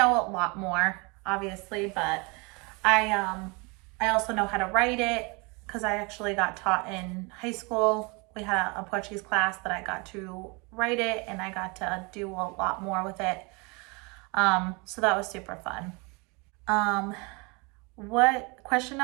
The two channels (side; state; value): left; quieter; 29.4 dB